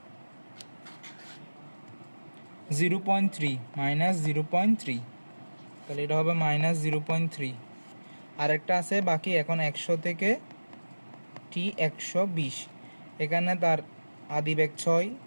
-0.3 মাইনাস 0.3, তাহলে এটা হবে মাইনাস 0.3। আরেকটা আছে বাকি, এখন 100 থেকে টি 120, এখানে তার আদি বেগ 6,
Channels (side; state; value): both; inverted; correlation -1.00